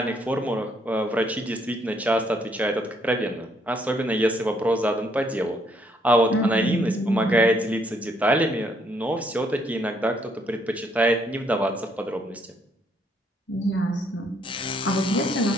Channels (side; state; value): both; normal; correlation 0.70